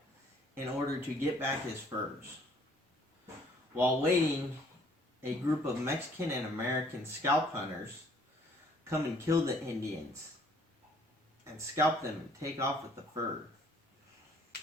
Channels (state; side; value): normal; both; correlation 0.60